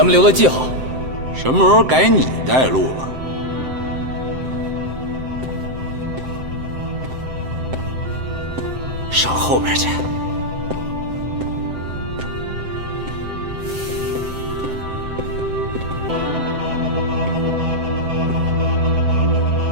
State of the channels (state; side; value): late; left; 7.7 ms